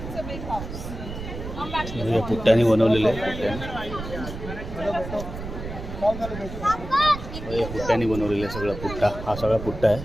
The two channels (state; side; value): noise; right; rumble, 9 dB below the sound